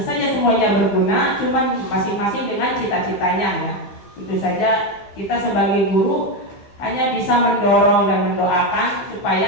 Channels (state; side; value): late; right; 15 ms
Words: saja semuanya berguna, cuman masing-masing dengan cita-citanya ya. Tentu saja kita sebagai guru hanya bisa mendorong dan mendoakan